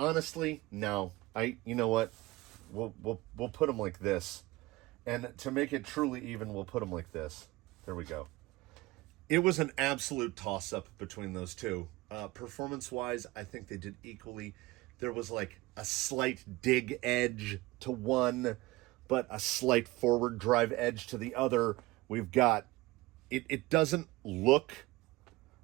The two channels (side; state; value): left; quieter; 20.6 dB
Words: no. You know what? We'll put them like this, and to make it truly even, we'll put them like this. There we go. It was an absolute toss-up between those two. Performance-wise, I think they did equally. There was like a slight dig edge to one, but a slight forward drive edge to the other. We've got, it doesn't look